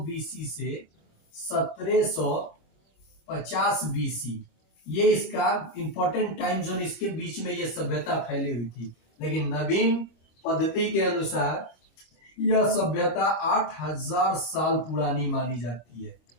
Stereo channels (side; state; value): right; late; 25 ms